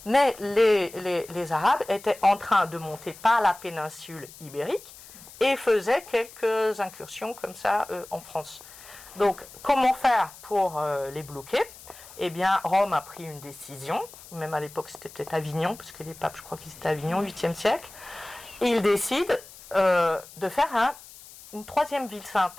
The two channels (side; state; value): left; noise; hiss, 19 dB below the sound